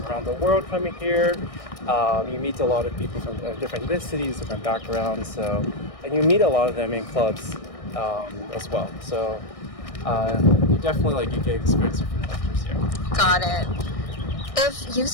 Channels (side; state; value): right; late; 1.6 ms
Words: around the world coming here. You meet a lot of people from different ethnicities, different backgrounds, and you meet a lot of them in clubs as well. So you definitely you get experience different cultures here. Got it. If